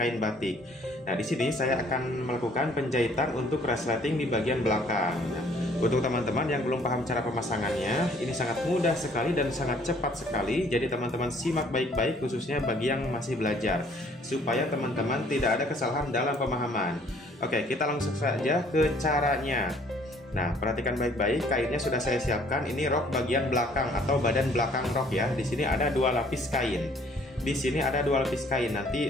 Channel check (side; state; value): both; normal; correlation 0.59